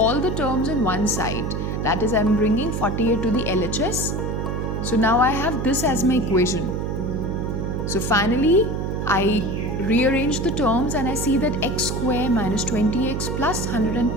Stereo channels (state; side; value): noise; right; hum, 2 dB below the sound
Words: the terms on one side. That is, I am bringing 48 to the LHS. So now I have this as my equation. So finally I rearrange the terms and I see that x square minus 20x plus